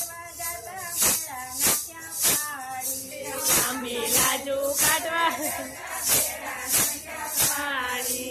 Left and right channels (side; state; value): both; identical; correlation 1.00